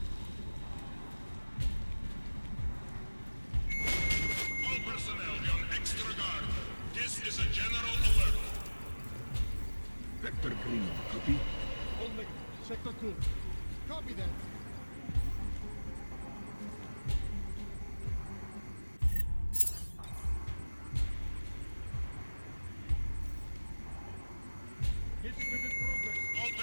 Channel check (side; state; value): both; inverted; correlation -1.00